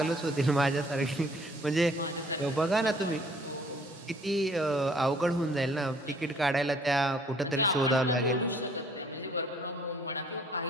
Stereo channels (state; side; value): normal; both; correlation 0.58